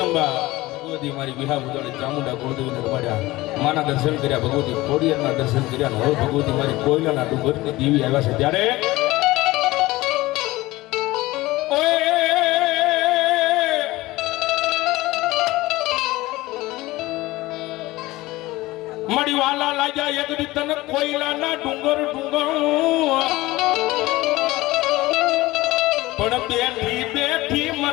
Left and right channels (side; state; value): right; quieter; 19.1 dB